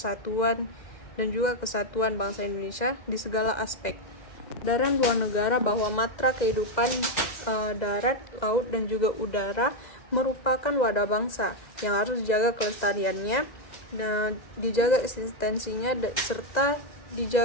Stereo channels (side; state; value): right; late; 2.1 ms